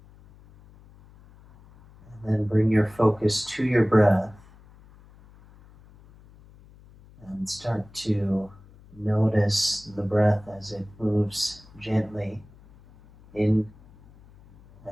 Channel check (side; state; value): left; noise; hum, 24 dB below the sound